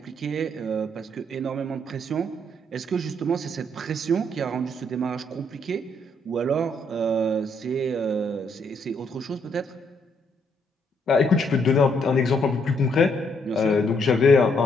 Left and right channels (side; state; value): both; normal; correlation 0.72